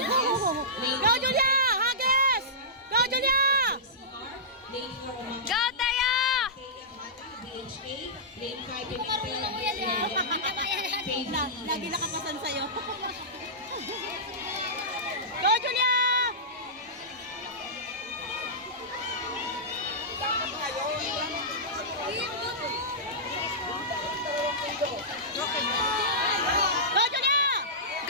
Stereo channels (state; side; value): normal; both; correlation -0.16